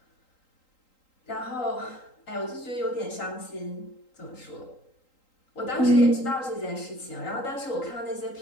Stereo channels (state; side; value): late; right; 3.8 ms